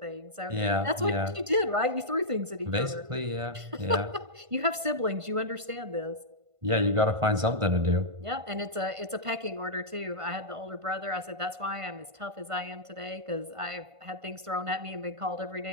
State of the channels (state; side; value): late; left; 1.5 ms